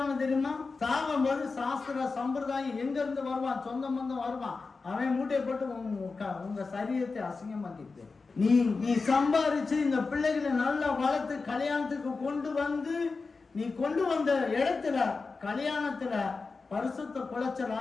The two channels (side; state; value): right; quieter; 4.2 dB